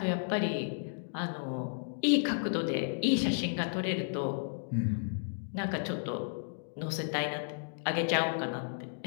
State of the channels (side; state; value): right; silent; digital silence